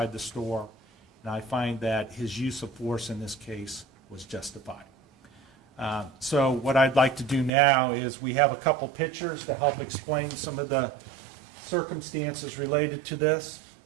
the store, and I find that his use of force in this case was justified. So what I'd like to do now is we have a couple pictures to help explain some of the circumstances related to this.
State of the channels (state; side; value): drops out; left; at 7.5 s